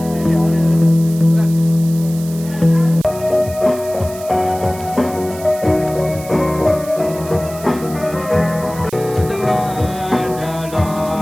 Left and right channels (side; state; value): right; noise; hiss, 16 dB below the sound